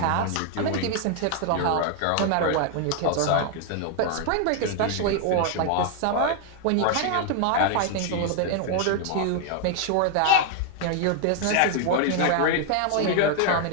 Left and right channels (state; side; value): different; both; correlation 0.00